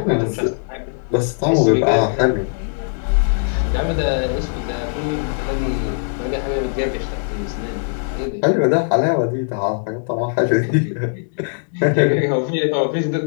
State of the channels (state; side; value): silent; right; digital silence